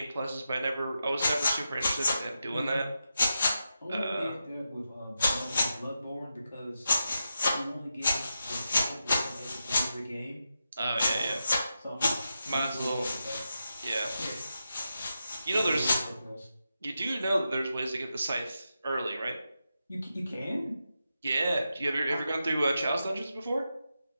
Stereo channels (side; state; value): both; inverted; correlation -0.88